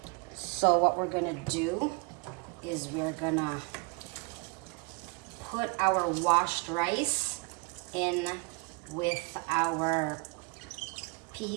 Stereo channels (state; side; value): quieter; left; 31.0 dB